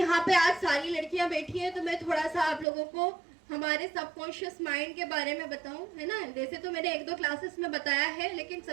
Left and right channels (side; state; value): left; drops out; at 2.7 s